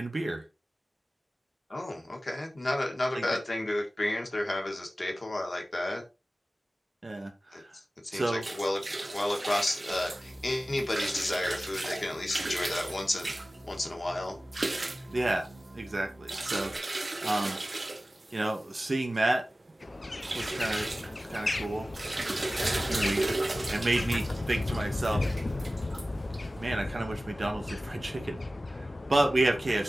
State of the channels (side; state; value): both; normal; correlation 0.96